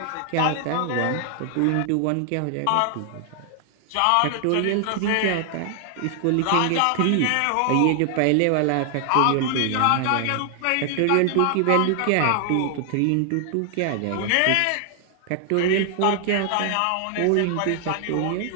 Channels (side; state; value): both; different; correlation 0.00